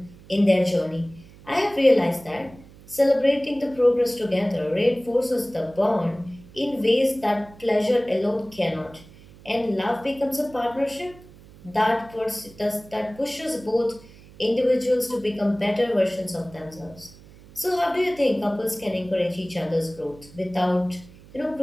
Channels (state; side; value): noise; right; hum, 22 dB below the sound